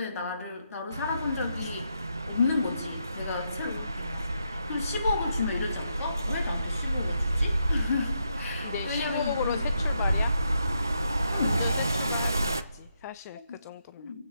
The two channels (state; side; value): inverted; both; correlation -0.80